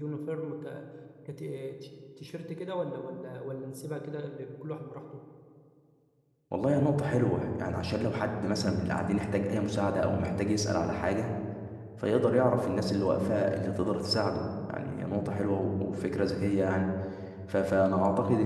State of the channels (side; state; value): both; identical; correlation 1.00